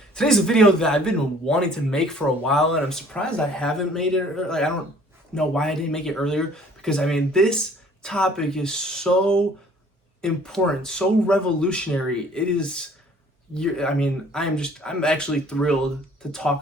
Today's a video that I've been wanting to make for a while, and I'm surprised I haven't made it. I don't know why I didn't make it earlier, because this topic is so important, so revolutionary. It is. I'm actually thrilled to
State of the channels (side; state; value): both; normal; correlation 0.55